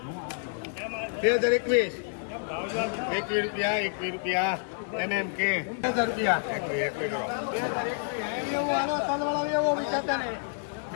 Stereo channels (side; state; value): right; silent; 59 dB below the other